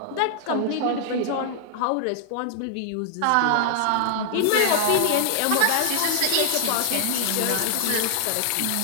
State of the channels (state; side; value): different; both; correlation -0.01